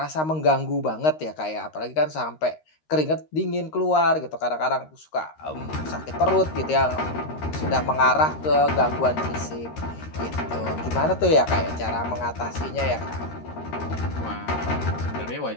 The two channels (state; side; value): late; right; 13 ms